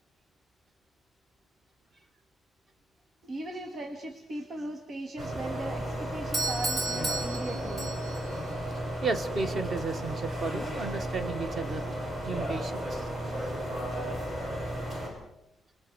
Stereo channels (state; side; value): normal; both; correlation 0.78